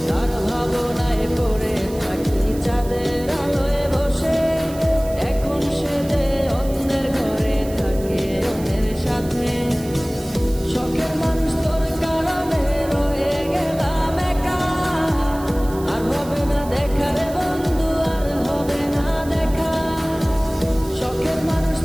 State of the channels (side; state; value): right; noise; hiss, 18 dB below the sound